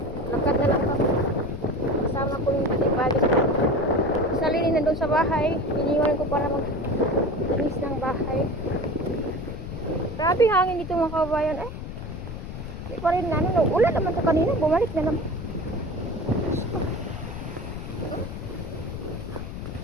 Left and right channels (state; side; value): noise; left; rumble, 8 dB below the sound